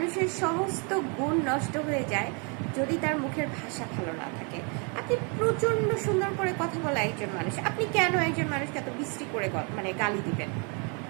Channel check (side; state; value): left; quieter; 35.3 dB